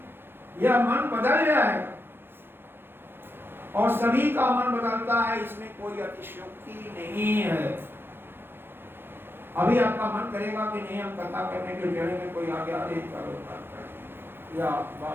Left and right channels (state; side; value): late; left; 0.10 ms